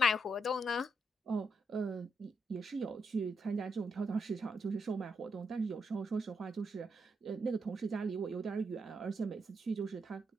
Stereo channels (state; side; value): normal; both; correlation 0.80